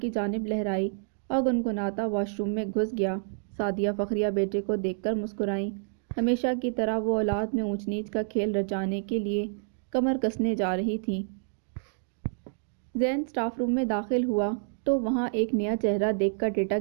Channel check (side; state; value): left; silent; digital silence